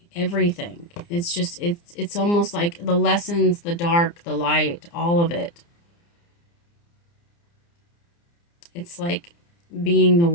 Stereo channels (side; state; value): right; late; 29 ms